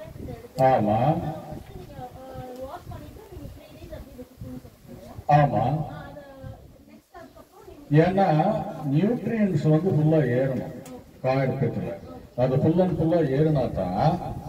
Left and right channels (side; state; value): both; identical; correlation 1.00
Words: ஆமா ஆமா. ஏன்னா நியூட்ரியன்ஸ் வந்து ஃபுல்லா ஏறணும் காயத்துல. அது ஃபுல் அண்ட் ஃபுல்லா ஏறினா தான்